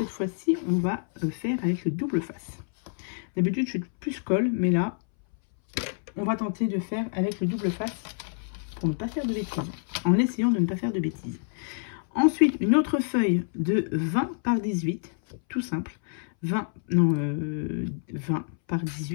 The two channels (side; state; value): right; silent; 60 dB below the other